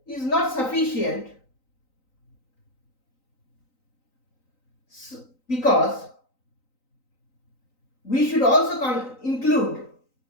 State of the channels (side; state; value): right; late; 3.9 ms